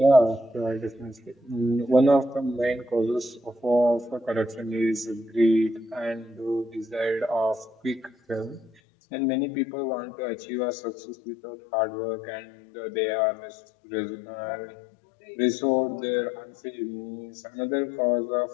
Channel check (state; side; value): drops out; right; at 8.7 s